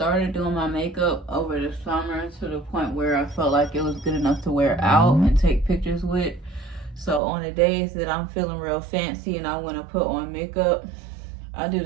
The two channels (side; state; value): left; drops out; at 7.2 s